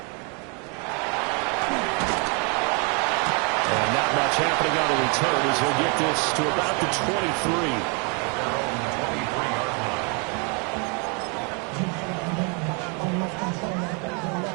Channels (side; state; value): left; quieter; 34.9 dB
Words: And not much happening on the return as he'll get this to about the 23.